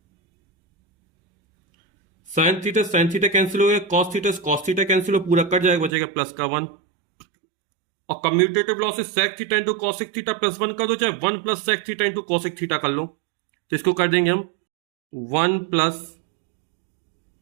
sine theta cancel हो गया, कॉस थीटा कैंसिल हो, पूरा कट जाएगा, बचेगा प्लस का 1। और commutative laws sec theta into cosec theta plus 1 कर दो, चाहे 1 plus sec theta into cosec theta कर लो, तो इसको कर देंगे हम 1 plus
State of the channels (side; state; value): left; drops out; at 5.9 s